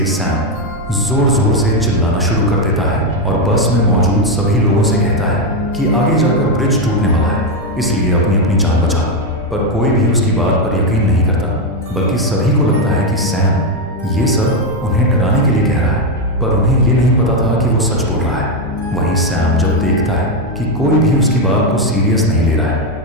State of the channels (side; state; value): both; normal; correlation 0.06